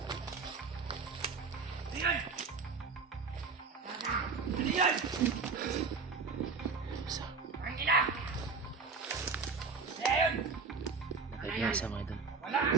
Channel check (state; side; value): quieter; left; 4.7 dB